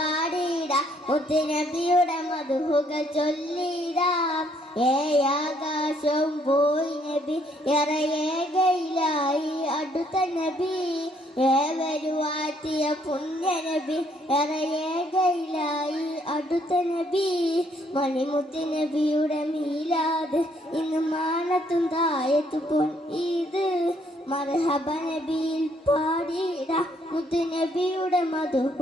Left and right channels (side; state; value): both; normal; correlation 0.68